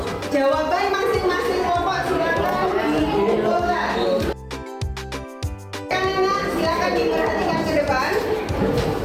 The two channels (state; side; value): identical; both; correlation 1.00